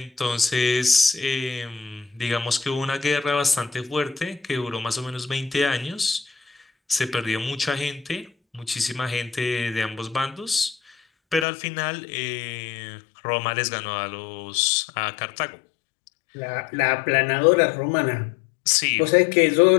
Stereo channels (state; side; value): drops out; right; at 11.5 s